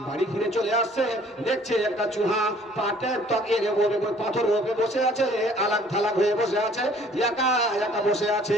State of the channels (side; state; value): both; normal; correlation 0.56